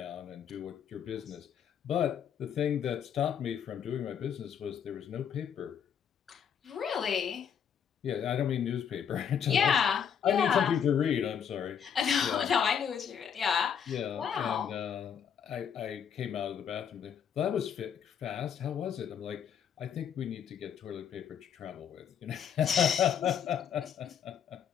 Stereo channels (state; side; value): quieter; right; 8.1 dB